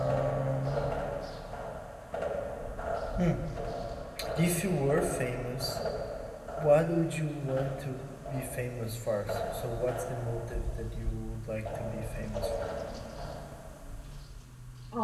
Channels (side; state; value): both; identical; correlation 1.00